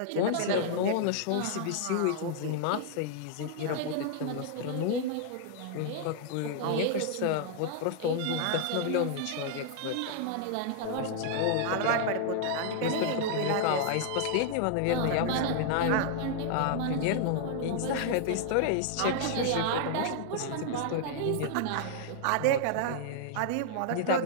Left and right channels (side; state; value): both; different; correlation -0.01